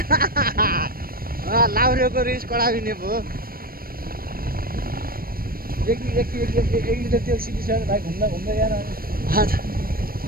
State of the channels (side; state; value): left; late; 0.43 ms